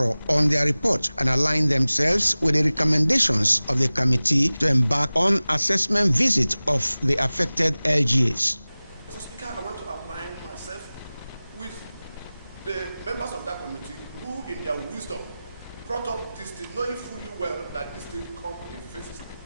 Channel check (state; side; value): inverted; both; correlation -0.98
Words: on their report and aligned themselves with the recommendations of the committee to embark on assessment visit of the affected LGAs. Mr. Speaker, I want to align myself with the members of that committee who, in their wisdom, brought up this thing, knowing fully well that this thing come in phases